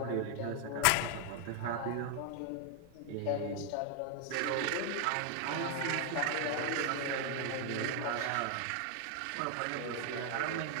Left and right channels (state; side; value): different; both; correlation 0.00